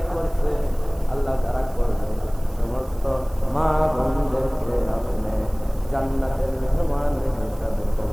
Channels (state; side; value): noise; right; hiss, 24 dB below the sound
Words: করছে আল্লাহ যারা করবে সমস্ত মা বোনদেরকে আপনি জান্নাতের মেহমান হিসাবে